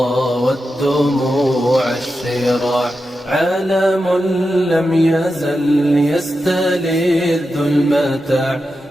والدموع الشراع عالم لم يزل يستلذ المتاع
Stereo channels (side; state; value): both; normal; correlation 0.89